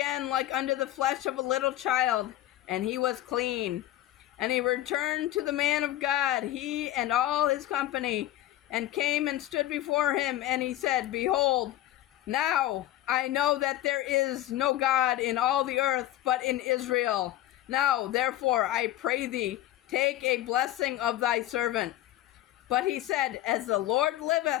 like unto the flesh of a little child, and he was clean. And he returned to the man of God, he and all his company, and came and stood before him. And he said, Behold, now I know that there is no God in all the earth but in Israel. Now therefore I pray thee, take a blessing of thy servant. But he said, As the Lord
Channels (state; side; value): quieter; right; 14.2 dB